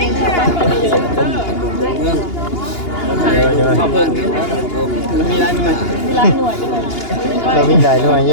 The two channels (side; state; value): right; late; 2.8 ms